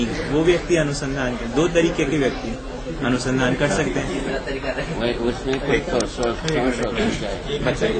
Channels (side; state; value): both; identical; correlation 1.00